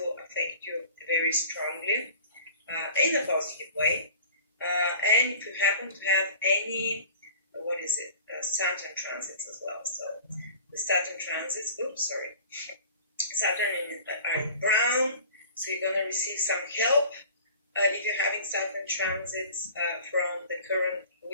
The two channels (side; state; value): both; inverted; correlation -0.44